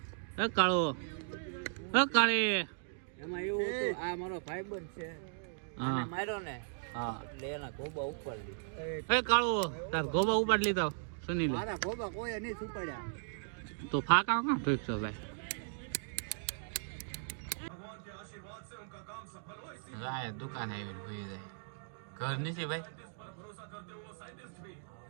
હે કાળુ કાળી એમાં એવું હતું આ મારો ભાઈબંધ છે અને માર્યો ને હા એટલે એના ગોબા ઉપાડી લીધા. હે કાળુ તારા ગોબા ઉપાડી લીધા? સુની લે મારા ગોબા કોઈ નહીં ઉપાડ્યા. તો ફાકા કાં ઠીક છે ભાઈ. રાય દુકાન આવી ભૂલી જાય ઘર નથી ભાઈ.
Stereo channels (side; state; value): left; silent; digital silence